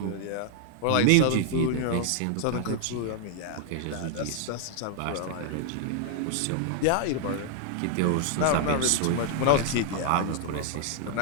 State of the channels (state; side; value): different; both; correlation 0.00